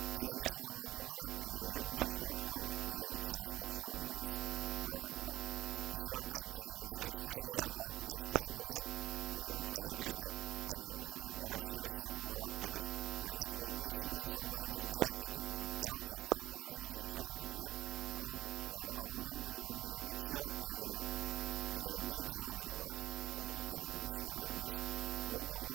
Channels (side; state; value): left; quieter; 16.4 dB